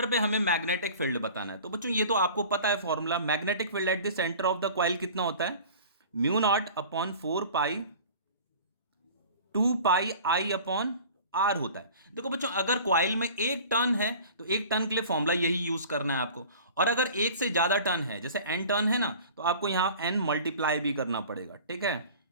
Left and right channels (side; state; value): both; inverted; correlation -0.43